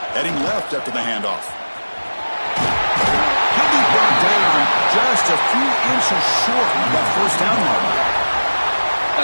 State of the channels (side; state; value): both; inverted; correlation -1.00